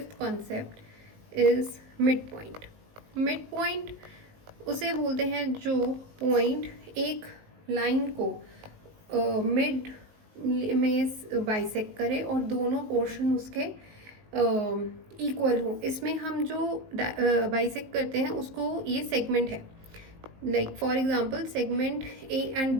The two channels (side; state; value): left; late; 19 ms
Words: concept is mid point. Mid point उसे बोलते हैं जो पॉइंट एक लाइन को मिड में बाइसेक्ट करे और दोनों पोर्शन उसके इक्वल हो. इसमें हम जो बाइसेक्ट करते हैं उसको ये सेगमेंट है. Like for example segment A and